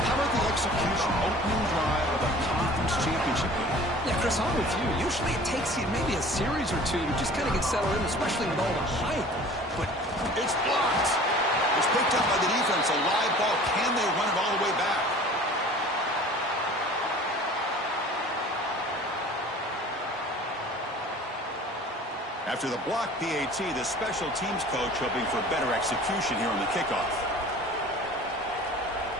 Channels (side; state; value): both; normal; correlation 0.45